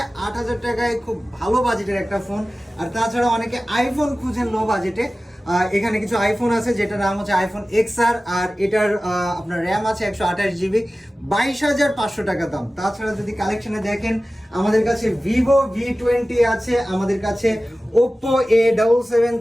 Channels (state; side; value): normal; both; correlation 0.96